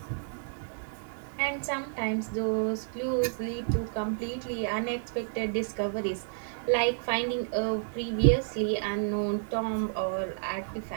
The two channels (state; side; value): silent; left; digital silence